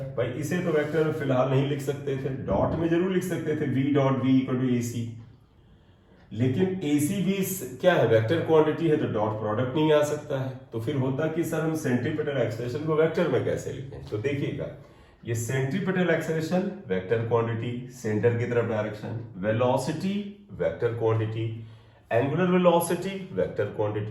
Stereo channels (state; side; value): identical; both; correlation 1.00